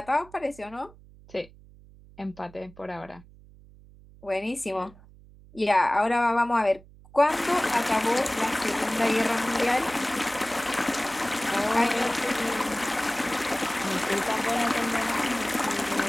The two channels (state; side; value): noise; right; hum, 23 dB below the sound